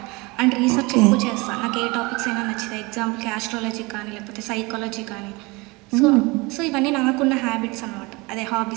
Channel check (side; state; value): left; quieter; 25.2 dB